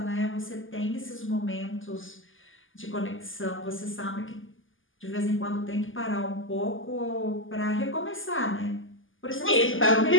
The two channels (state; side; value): late; right; 0.58 ms